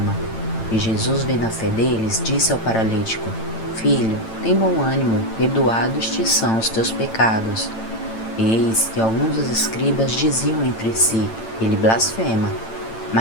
E Jesus, vendo a fé deles, disse ao paralítico: Filho, tem bom ânimo, perdoados te são os teus pecados. E eis que alguns dos escribas diziam entre si: Ele blasfema.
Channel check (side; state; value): right; late; 8.9 ms